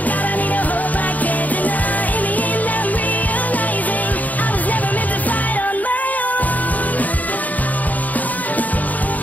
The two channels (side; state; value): right; late; 0.076 ms